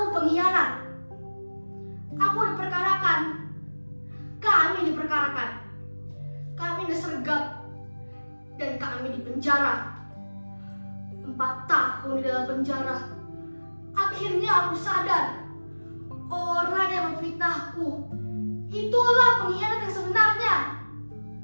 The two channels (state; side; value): inverted; both; correlation -1.00